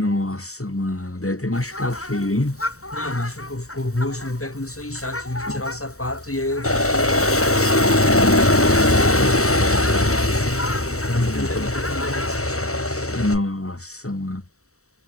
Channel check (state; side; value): late; right; 0.64 ms